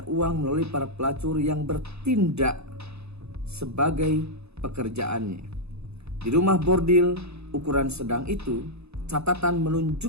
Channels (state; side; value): late; left; 0.80 ms